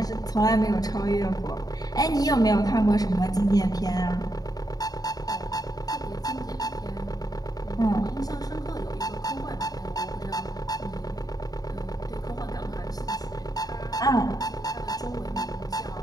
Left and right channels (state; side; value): late; right; 0.18 ms